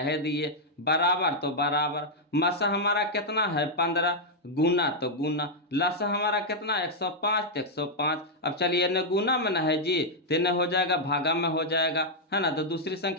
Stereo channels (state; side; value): normal; both; correlation -0.03